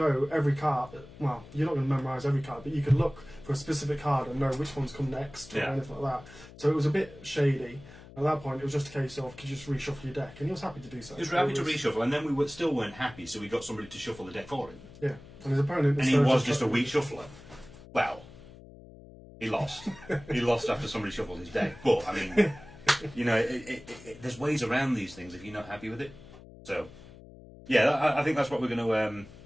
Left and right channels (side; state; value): left; noise; hum, 19 dB below the sound